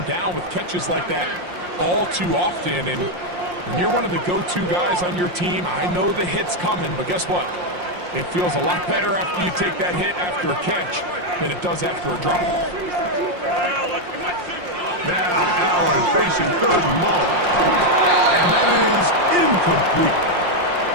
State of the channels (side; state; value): left; late; 5.6 ms